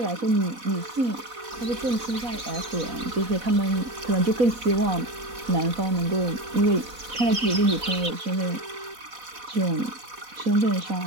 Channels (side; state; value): left; late; 4.1 ms